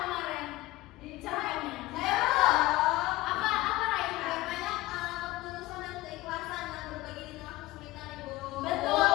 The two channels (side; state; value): right; quieter; 18.6 dB